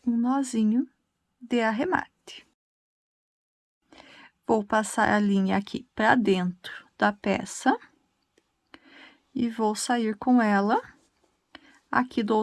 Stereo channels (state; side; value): identical; both; correlation 1.00